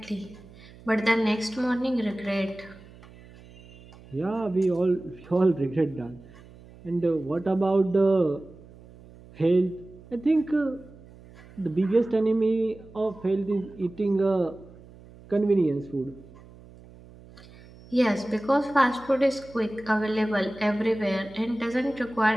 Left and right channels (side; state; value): right; noise; hum, 21 dB below the sound